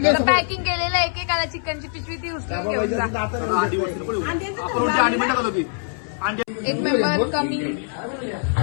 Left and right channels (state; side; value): silent; right; 63 dB below the other